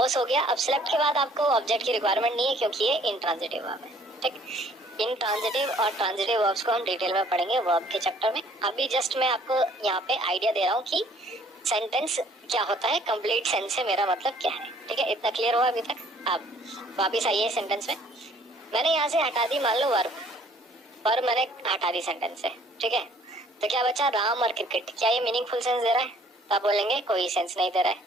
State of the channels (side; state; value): both; normal; correlation 0.58